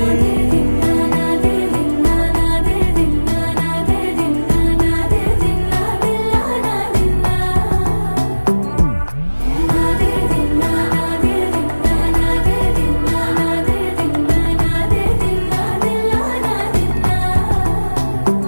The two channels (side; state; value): both; inverted; correlation -1.00